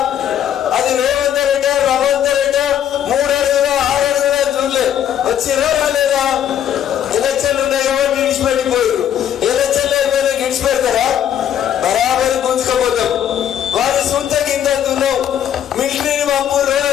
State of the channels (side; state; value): right; quieter; 10.0 dB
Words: అది రేవంత్ రెడ్డి రవంత్ రెడ్డి 3 అడుగుల 6 అడుగుల చూడలే వచ్చిరా రాలేదా? ఎలక్షన్లు ఉన్నాయి ఎవరు విడిచిపెట్టిపోయారు. ఎలక్షన్లు అయిపోయినా విడిచిపెడతారా? బరాబరి గుంజుకపోతాం. వారి సొంత కింద అంటున్నాం. మిలిటరీని పంపురు